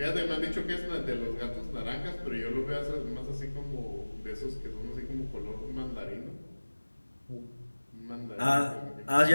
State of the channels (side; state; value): both; inverted; correlation -1.00